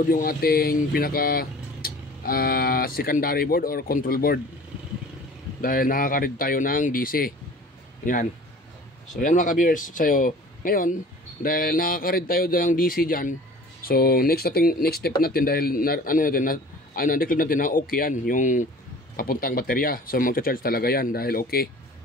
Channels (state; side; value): normal; both; correlation 0.45